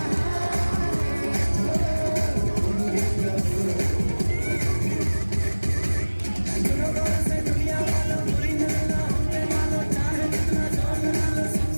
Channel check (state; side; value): inverted; both; correlation -1.00